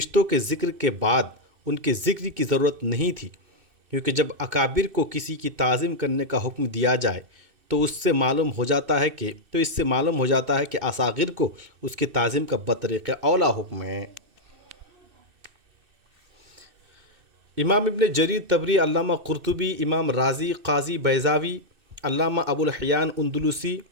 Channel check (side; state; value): left; late; 2.6 ms